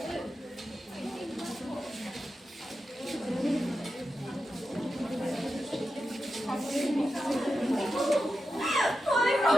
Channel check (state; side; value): normal; both; correlation 0.89